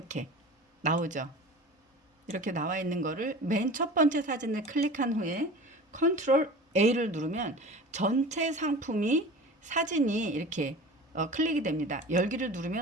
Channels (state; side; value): normal; both; correlation 0.37